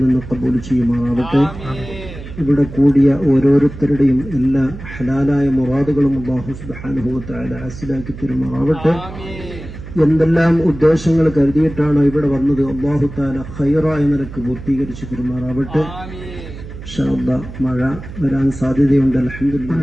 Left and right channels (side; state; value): right; noise; hum, 12 dB below the sound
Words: നിന്ന് ഖബൂൽ ചെയ്യുമാറാവട്ടെ. ഇവിടെ കൂടിയ ഓരോരുത്തരുടെയും എല്ലാ ഹലാലായ മുറാദുകളും അല്ലാഹു സുബ്ഹാനഹു വ തആല ഹാസിലാക്കി തരുമാറാവട്ടെ. എന്തെല്ലാം ഉദ്ദേശങ്ങൾ കരുതിയിട്ടാണ് ഇവിടെ വന്നത് അല്ലാഹു തആല ഖൈറായ നിലക്ക് പൂർത്തീകരിച്ചു തരുമാറാവട്ടെ. ഇൻഷാ അല്ലാഹ് മഴ വരാൻ സാധ്യതയുണ്ട്.